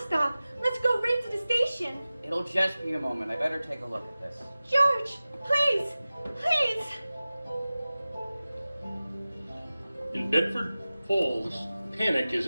Let's go right to the station. It'll just be a moment. I better take a look at this. George, please, please. In Bedford Falls, panic is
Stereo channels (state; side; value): inverted; both; correlation -0.97